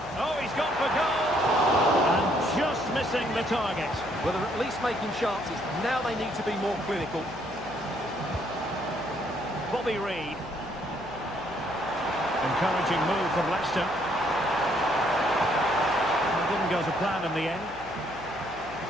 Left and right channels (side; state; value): left; noise; hum, 19 dB below the sound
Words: Oh, he's gone for goal. And just missing the target. Well, they're at least making chances. Now they need to be more clinical. Bobby Reid. Encouraging move from Leicester. It didn't go to plan in the end.